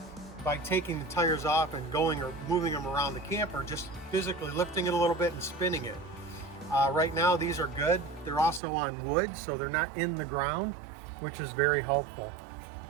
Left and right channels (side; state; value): left; drops out; at 8.6 s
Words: by taking the tires off and going or moving them around the camper, just physically lifting it a little bit and spinning it. Right now these are good. They're also on wood, so they're not in the ground, which is very helpful.